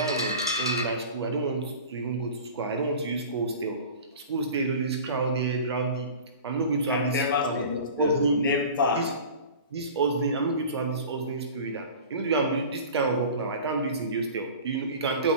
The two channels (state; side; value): inverted; both; correlation -0.39